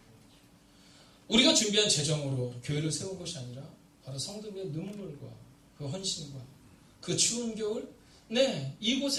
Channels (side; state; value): both; identical; correlation 1.00